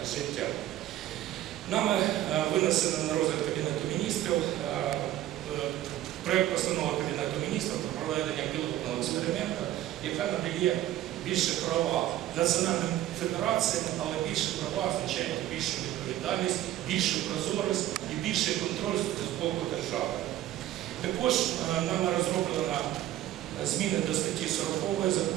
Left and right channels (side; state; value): left; quieter; 13.5 dB